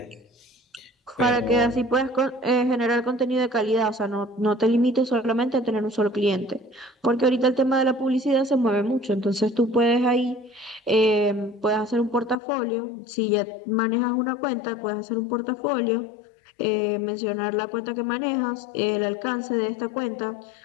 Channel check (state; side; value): drops out; right; at 12.4 s